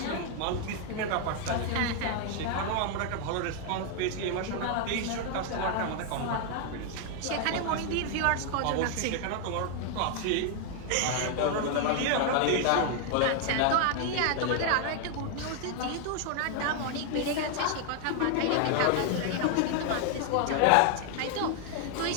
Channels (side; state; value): both; different; correlation 0.00